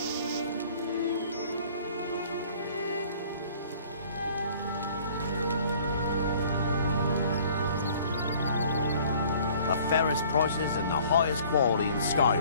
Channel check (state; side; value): inverted; both; correlation -0.53